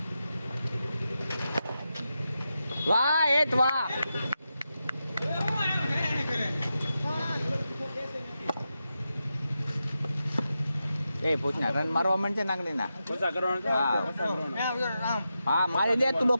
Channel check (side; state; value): both; inverted; correlation -0.89